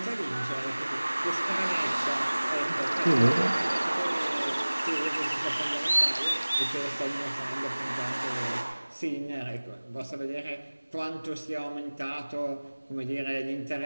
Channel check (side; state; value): both; inverted; correlation -1.00